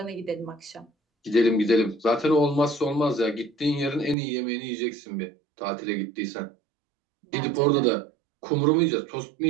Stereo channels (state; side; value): drops out; left; at 4.2 s